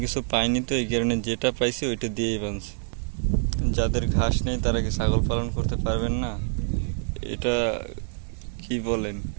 কিছু পাইনি, তো এই কারণে যেটা পাইছে ওইটা দিয়েই বাঁধছে। যাদের ঘাস নেই তারা কি ছাগল পালন করতে পারবেন না? এটা কি বলেন?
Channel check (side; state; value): left; silent; 61 dB below the other